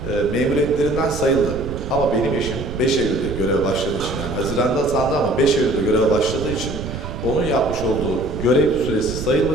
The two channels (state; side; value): noise; right; rumble, 8 dB below the sound